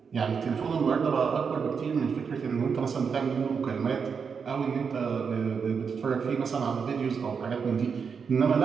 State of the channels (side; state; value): left; quieter; 6.1 dB